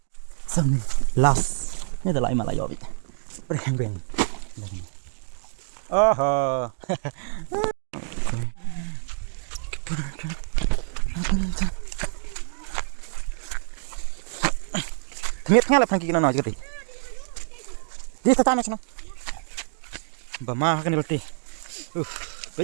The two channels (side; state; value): left; silent; digital silence